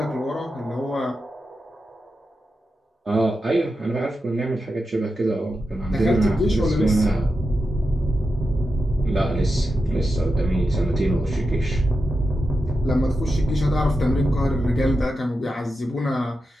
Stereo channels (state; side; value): normal; both; correlation 0.89